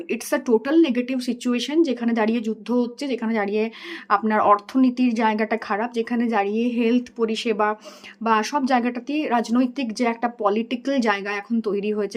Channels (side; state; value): both; identical; correlation 1.00